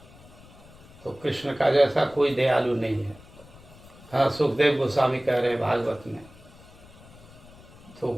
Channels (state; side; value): noise; left; rumble, 22 dB below the sound